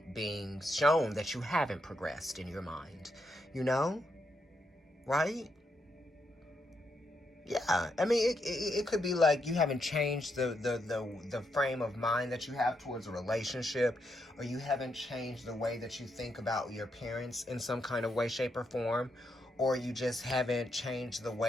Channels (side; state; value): both; normal; correlation 0.80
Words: shown that you haven't progressed in your mind. Right? Yeah, I mean, it could be like you haven't changed the frame of mind that you have towards a relationship, or you haven't changed the way that you think about your parents in some kind of way, shape, or form, or you just haven't changed the